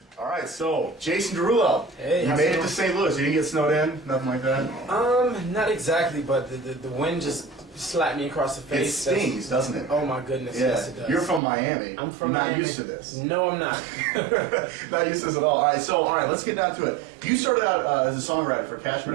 All right, so Jason Derulo, Hey, you made it to St. Louis. You didn't get snowed in, nothing like that. Not exactly, but the wind just slapped me across the It face. stings, doesn't it? Oh my goodness, Yeah. yes it does. You're from Miami. I'm from You're not Miami. used to this. No, I'm not. Not used to this at all. All right, let's get down to it. You started out as a songwriter for Cash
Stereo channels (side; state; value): left; drops out; at 11.4 s